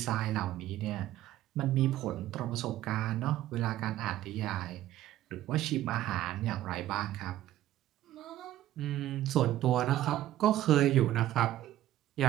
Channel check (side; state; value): left; quieter; 13.8 dB